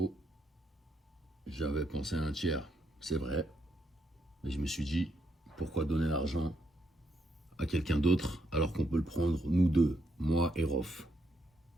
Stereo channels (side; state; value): both; normal; correlation 0.77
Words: J'avais pensé à un tiers, c'est vrai. Mais je me suis dit, pourquoi donner l'argent à quelqu'un d'autre alors qu'on peut le prendre nous deux, moi et Rof.